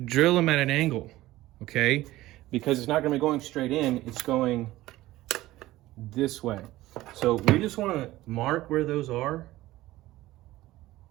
them at an angle, okay? Because it's not going to be going straight in, it's going this way. So we just want to mark where those are.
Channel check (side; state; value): left; quieter; 16.8 dB